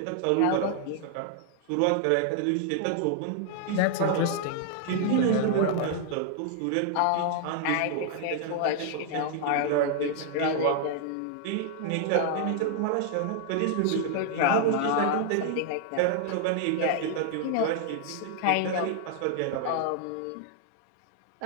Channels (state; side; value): different; both; correlation 0.00